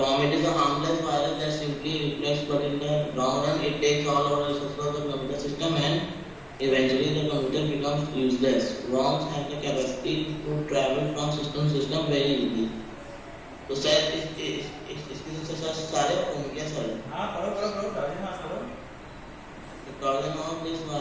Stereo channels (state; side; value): identical; both; correlation 1.00